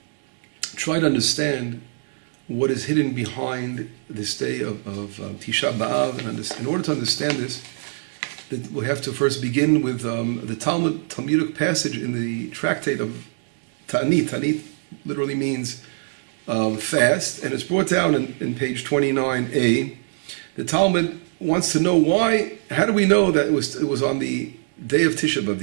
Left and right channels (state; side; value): silent; left; 64 dB below the other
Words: try to understand what is hidden behind this day of Tishah B'Av. And in order to understand this, we have to first begin with the Talmudic passage in the tractate of Ta'anit. Ta'anit literally means fast, and it's brought down in page 29a. The Talmud wants to know how do we know that it was on the day of Tisha B'Av,